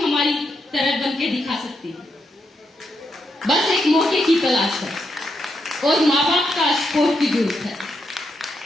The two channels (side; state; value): both; normal; correlation 0.82